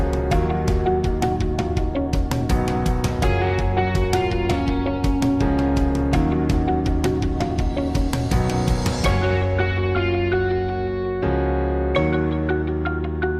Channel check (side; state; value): both; identical; correlation 1.00